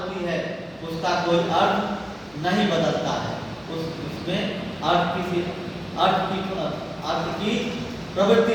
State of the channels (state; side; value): noise; left; hum, 29 dB below the sound